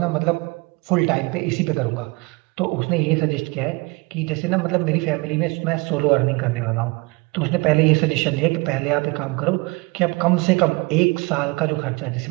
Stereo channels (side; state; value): left; quieter; 26.5 dB